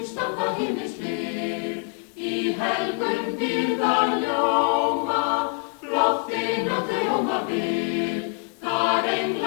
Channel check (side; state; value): right; quieter; 34.4 dB